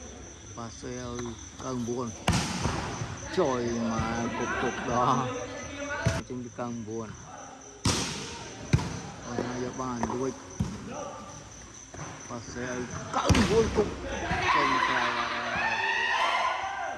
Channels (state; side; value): identical; both; correlation 1.00